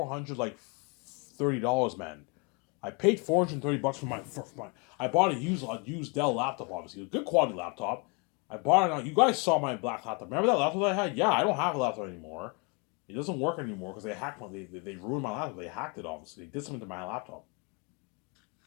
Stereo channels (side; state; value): right; quieter; 32.1 dB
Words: man. I paid $430 for my. I bought a used Dell laptop, obviously a good quality laptop. I bought it on. You guys saw my black laptop. Remember that laptop that I had? Yeah, I don't have a laptop anymore. It doesn't work anymore because they hacked my. They ruined my laptop. They hacked it. Obviously, they did something to my laptop.